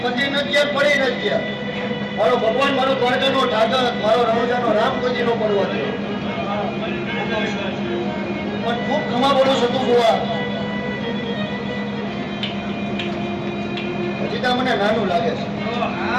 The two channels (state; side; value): identical; both; correlation 1.00